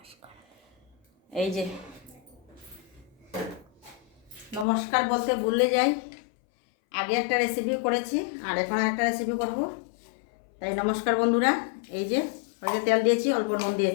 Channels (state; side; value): drops out; right; at 4.7 s